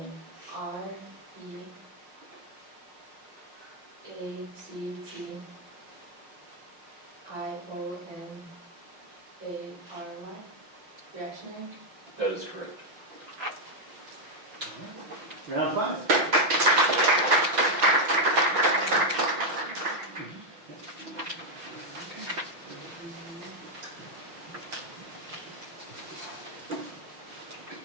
REACTIONARY, reactionary. That is correct. Round 5.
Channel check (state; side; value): late; left; 5.9 ms